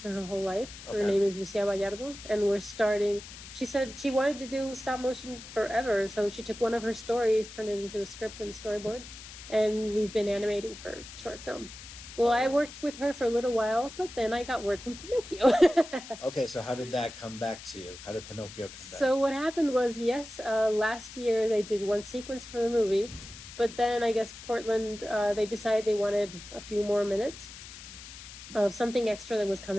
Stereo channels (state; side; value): noise; left; hiss, 14 dB below the sound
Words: her whole life. Okay. Her name is Lucia Vallardo, and we're starting. She said she wanted to do stop motion forever, so she took one of her stories, turned it into a script and a storyboard, and we've been animating her short film. Well, I worked with her for a little while, but then I got word from Pinocchio. Okay, so how did that come back to you? How did Pinocchio come back? So what happened was, last year they did one sequence for the movie, but then I guess Portland, they decided they wanted a few more minutes of something extra that was